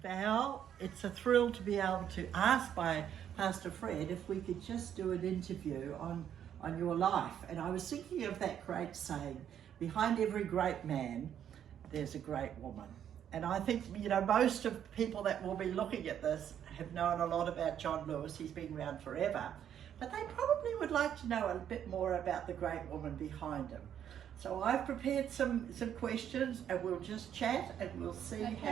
Val. It's a thrill to be able to ask by Pastor Fred if we could just do an interview on your life. And I was thinking of that great saying, behind every great man, there's a great woman. And I think, most of people that will be looking at this have known a lot about John Lewis. He's been around forever. But they probably would like to know a bit more about the great woman behind him. So I've prepared some questions and we'll just chat and we'll see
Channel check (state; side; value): quieter; left; 9.6 dB